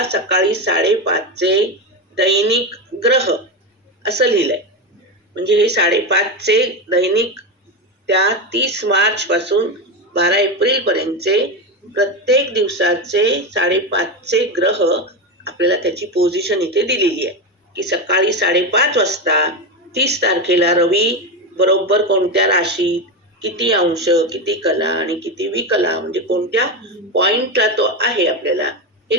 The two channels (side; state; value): both; normal; correlation 0.15